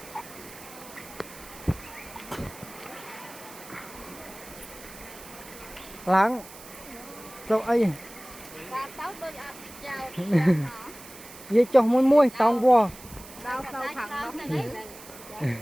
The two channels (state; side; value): noise; right; hiss, 17 dB below the sound